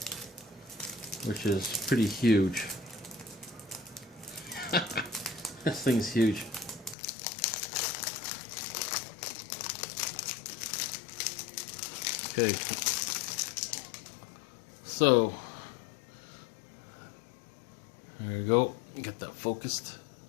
which is pretty huge. This thing's huge. Okay. So there we go. Get that focused.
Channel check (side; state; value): right; drops out; at 7.0 s